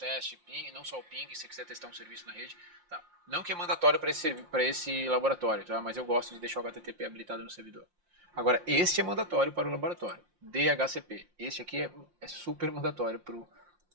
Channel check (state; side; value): late; left; 5.7 ms